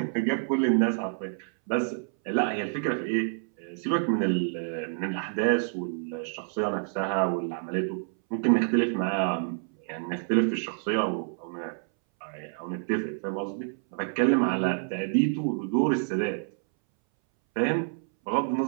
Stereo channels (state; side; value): silent; left; 59 dB below the other